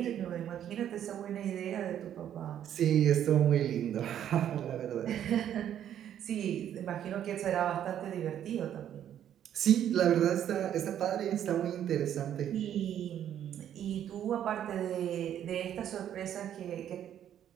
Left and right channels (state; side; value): quieter; left; 10.3 dB